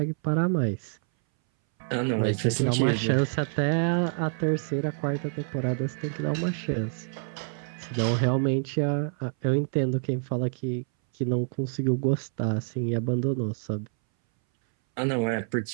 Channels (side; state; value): left; silent; 60 dB below the other